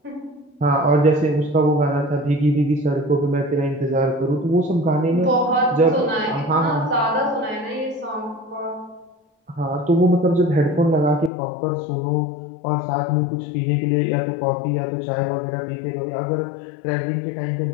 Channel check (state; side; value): drops out; right; at 11.3 s